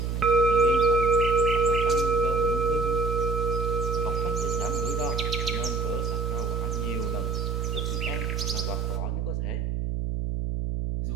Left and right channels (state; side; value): noise; right; hum, 1 dB below the sound